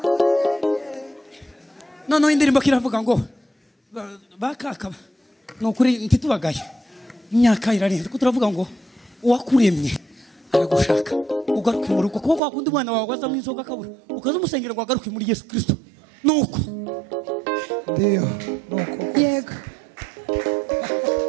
Noneho indirimbo kiravuga ngo bakaka nukuri ntitubagaye. Imyaka irarenze ko turavuga ngo uwakuremye aragushaka ugaruke mu rugo kuko wakundi mwana wawe waza mu izoga kabura ukaza umusengera ngo agaruke muri Yesu Kristo. Nuko Ndio. Nuko. Yego.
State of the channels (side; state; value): left; drops out; at 12.4 s